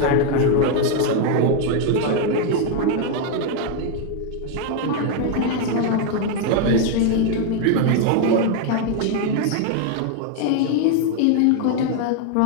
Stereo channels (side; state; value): both; different; correlation 0.00